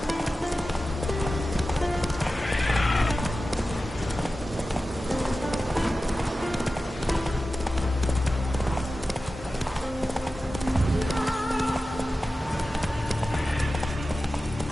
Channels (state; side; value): normal; both; correlation 0.94